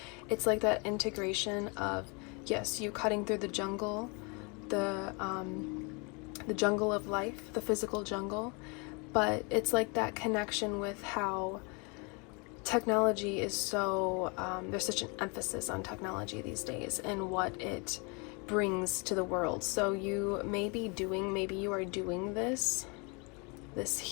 it's like that integration of, yes, you cutting through the jungle, the jungle of life, the physical jungle, but it's like that connection with how technology is so, there's such an emphasis on technology these days and what it brings to the world. So you may be doing, maybe you are doing this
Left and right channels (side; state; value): right; quieter; 31.9 dB